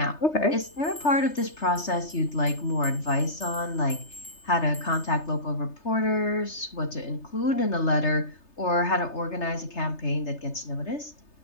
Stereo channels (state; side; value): late; right; 3.3 ms